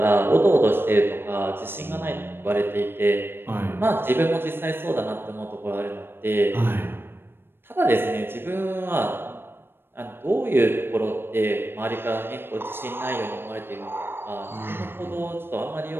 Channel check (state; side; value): late; left; 0.10 ms